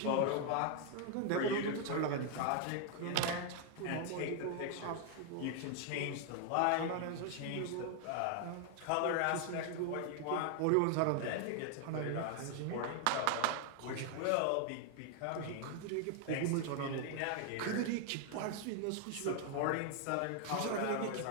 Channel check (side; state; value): both; different; correlation 0.00